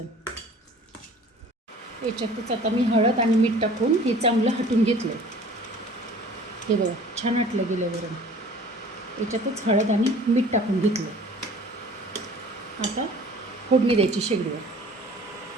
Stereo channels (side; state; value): both; normal; correlation 0.48